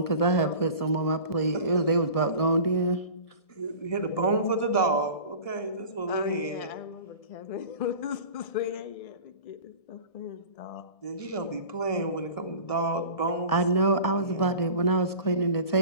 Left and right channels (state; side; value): late; right; 1.7 ms